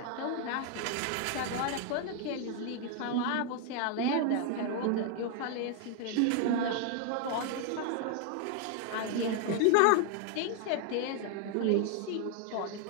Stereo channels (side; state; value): both; different; correlation 0.00